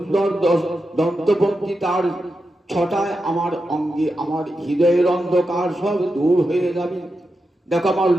দন্তপঙ্ক্তি, তার ছটায় আমার অঙ্গে, আমার হৃদয়ের অন্ধকার সব দূর হয়ে যাবে। দেখো আমার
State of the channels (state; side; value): normal; both; correlation 0.88